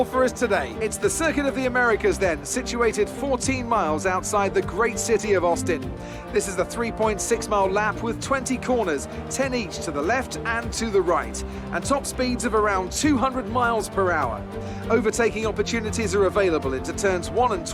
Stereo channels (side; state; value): both; identical; correlation 1.00